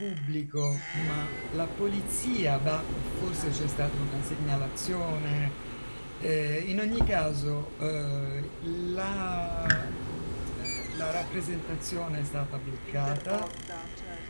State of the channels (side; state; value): both; inverted; correlation -1.00